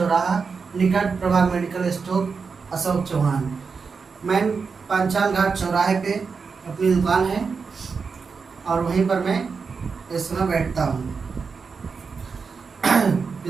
निकट प्रभा मेडिकल स्टोर, अशोक चौहान। मैं पांचाल घाट चौराहे पे अपनी दुकान है और वहीं पर मैं इस समय बैठता हूँ।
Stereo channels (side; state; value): left; quieter; 5.2 dB